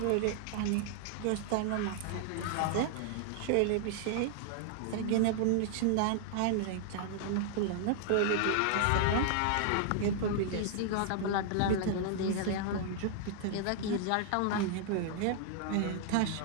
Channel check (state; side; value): different; both; correlation -0.01